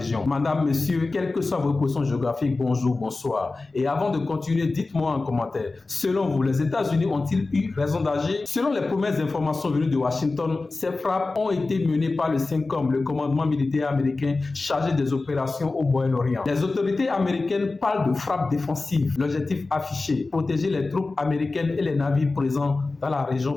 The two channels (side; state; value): right; quieter; 3.5 dB